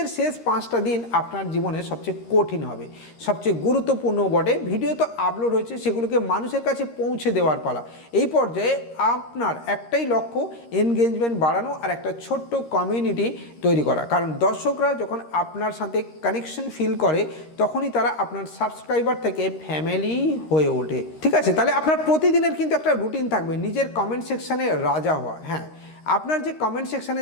শেষ 5টা দিন আপনার জীবনে সবচেয়ে কঠিন হবে, সবচেয়ে গুরুত্বপূর্ণ বটে। ভিডিও তো আপলোড হয়েছে, সেগুলোকে মানুষের কাছে পৌঁছে দেওয়ার পালা। এই পর্যায়ে আপনার একটাই লক্ষ্য, এনগেজমেন্ট বাড়ানো আর একটা ছোট্ট কমিউনিটি তৈরি করা। কারণ দর্শকরা যখন আপনার সাথে কানেকশন ফিল করে, তখনই তারা আপনার সাবস্ক্রাইবার থেকে ফ্যামিলি হয়ে ওঠে। ঠিক আছে, তাহলে আপনার প্রতিদিনের কিন্তু একটা রুটিন থাকবে, নিজের কমেন্ট সেকশানে রাজা হওয়া। হ্যাঁ, আপনার যে কমেন্ট সেকশানে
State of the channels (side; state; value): right; late; 13 ms